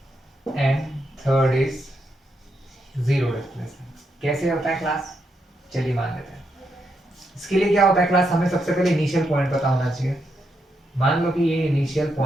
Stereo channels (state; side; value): normal; both; correlation 0.81